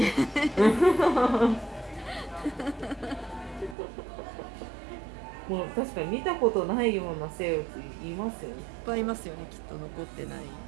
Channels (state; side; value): drops out; left; at 3.8 s